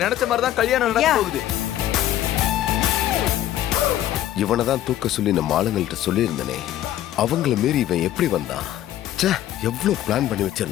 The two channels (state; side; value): quieter; right; 12.7 dB